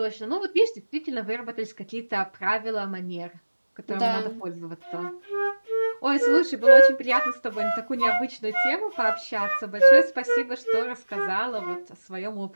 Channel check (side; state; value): both; inverted; correlation -1.00